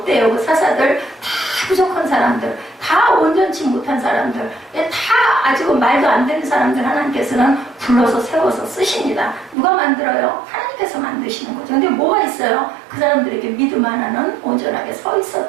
그 사사들 다 부족한 사람들, 다 온전치 못한 사람들, 다 아직 말도 안 되는 사람들 하나님께서는 불러서 세워서 쓰십니다. 누가 만들어요? 하나님께서 만드시는 거죠. 근데 뭐가 있어요? 그 사람들에게 믿음 하나는 온전하게 서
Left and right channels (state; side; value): drops out; left; at 9.6 s